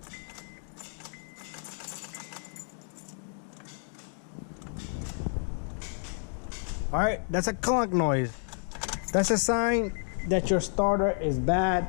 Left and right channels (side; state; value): right; silent; 57 dB below the other